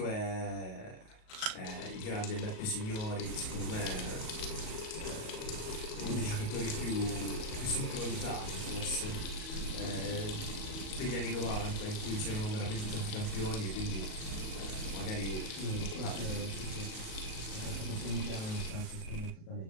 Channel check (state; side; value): late; right; 37 ms